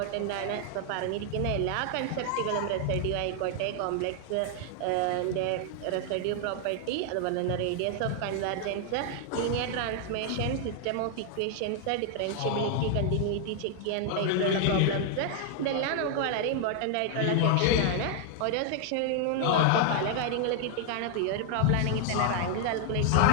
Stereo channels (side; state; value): both; different; correlation 0.00